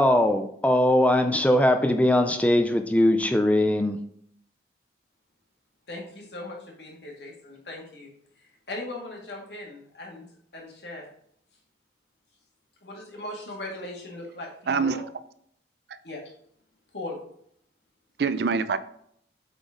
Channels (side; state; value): both; normal; correlation 0.75